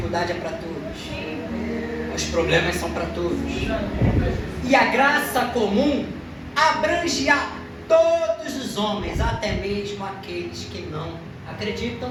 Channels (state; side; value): identical; both; correlation 1.00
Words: é para todos, os problemas são para todos. E a graça comum abrange a todos os homens, até mesmo aqueles que não acreditam